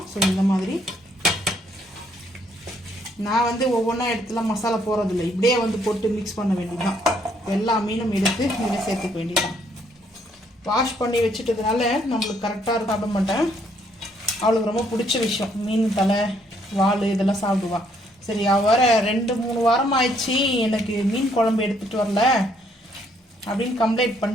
ஸோ இந்த மாதிரி நான் வந்து ஒவ்வொன்றா இடத்துல மசாலா போடுறதில்ல, இப்படியே வந்து போட்டு மிக்ஸ் பண்ண வேண்டியதுதான். எல்லா மீனும் எடுத்து இதில் சேர்த்துக்க வேண்டியதுதான். வாஷ் பண்ணி வச்சுட்டதுனால நம்மளுக்கு கரெக்டாக சாப்பிட மாட்டேன். அவளுக்கு ரொம்ப பிடிச்ச விஷயம் மீன் தலை வால் இதெல்லாம் சாப்பிடுவா. சரி, வர 2-3 வாரம் ஆயிடுச்சு எனக்கு மீன் குழம்பு எடுத்துகிட்டு வரல அப்படின்னு கம்ப்ளைண்ட்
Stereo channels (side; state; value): both; normal; correlation 0.69